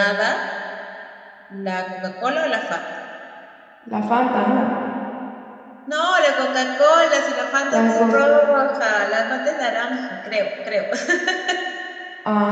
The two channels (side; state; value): both; identical; correlation 1.00